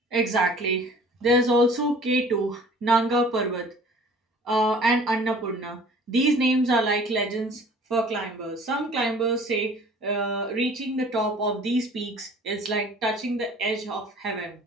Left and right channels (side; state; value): both; normal; correlation 0.49